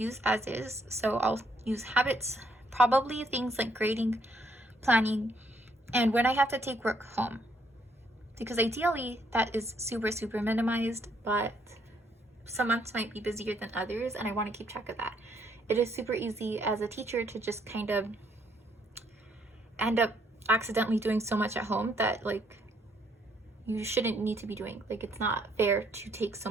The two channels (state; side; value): normal; both; correlation 0.70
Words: as is. So I'll use habits, probably things like grading, planning, and when I have to take work home. Because ideally that is super minimized, but some months might be busier than others and I want to keep track of that. It is super easy as a teacher to just kind of end up accidentally doing so much at home that like you shouldn't need to be doing. Like, it's not fair to take so